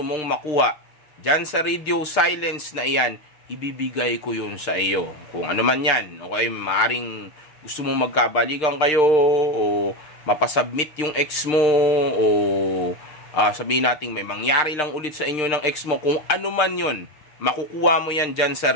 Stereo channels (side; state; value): right; late; 6.6 ms